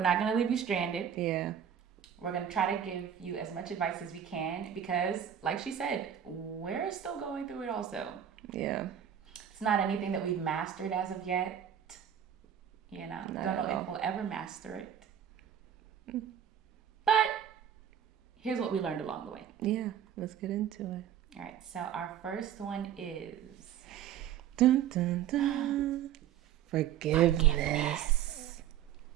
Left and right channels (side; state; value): left; quieter; 9.5 dB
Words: not going to leave you stranded. Yeah. We're going to try to give you as much advice as we can because, like she said, we're still going through it also. Yeah. It's not anything that we've mastered as of yet. You know, don't know if we'll ever master it. But here's what we learned along the way. Yeah, let's get into it. All right, so our first one is... Dun, dun, dun. Forgiveness.